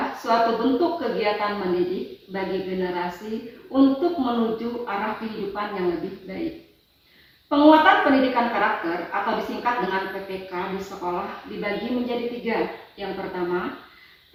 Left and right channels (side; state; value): both; identical; correlation 1.00